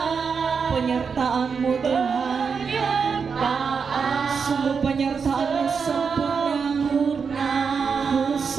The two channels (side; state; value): left; quieter; 5.8 dB